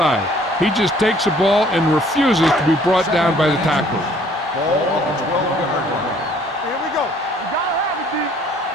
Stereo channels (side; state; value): both; normal; correlation 0.58